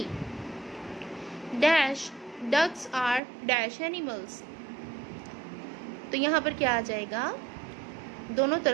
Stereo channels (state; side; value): drops out; left; at 3.2 s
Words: Dash, ducks are dash animals. तो यहाँ पर क्या आ जाएगा? दोनों